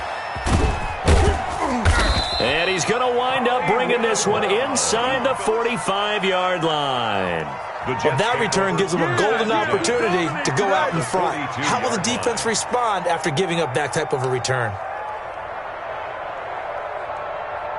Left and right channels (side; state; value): both; identical; correlation 1.00